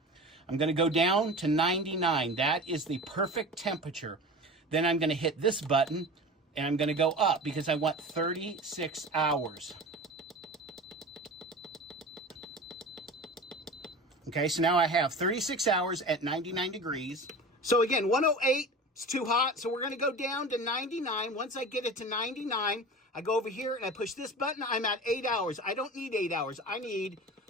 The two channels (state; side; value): normal; both; correlation 0.34